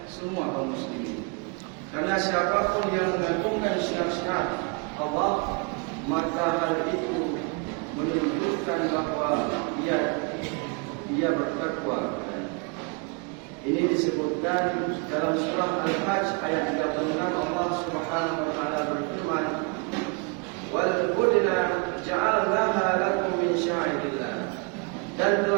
semua kaum muslimin. Karena siapapun yang mengagungkan syiar-syiar Allah, maka hal itu menunjukkan bahawa dia bertakwa. Ini disebutkan dalam surah Al-Hajj ayat 36. Allah Subhanahu wa taala berfirman, "Wal budna ja'alnaha lakum min sya'irillah." Dan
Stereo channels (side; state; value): left; quieter; 33.1 dB